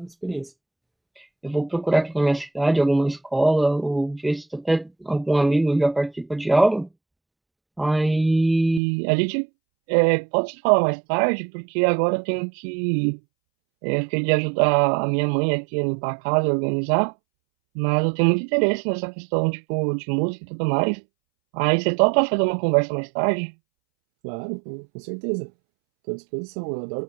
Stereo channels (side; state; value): left; drops out; at 8.8 s